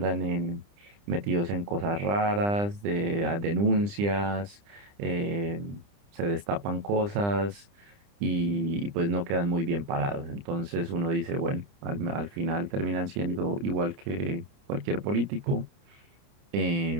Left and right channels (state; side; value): late; left; 30 ms